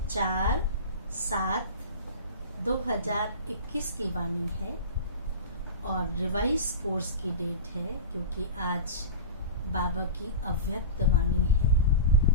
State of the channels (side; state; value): both; inverted; correlation -0.30